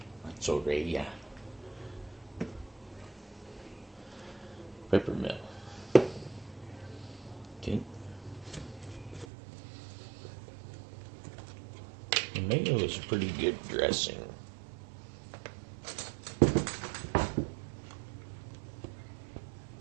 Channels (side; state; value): left; drops out; at 9.2 s